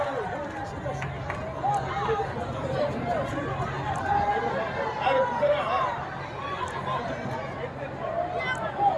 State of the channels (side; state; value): both; identical; correlation 1.00